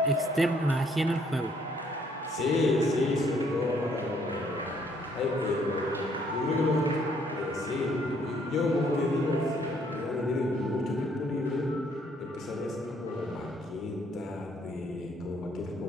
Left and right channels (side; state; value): both; normal; correlation 0.66